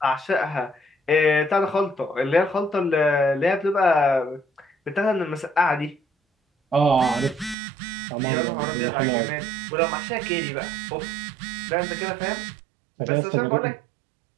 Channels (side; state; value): left; drops out; at 7.6 s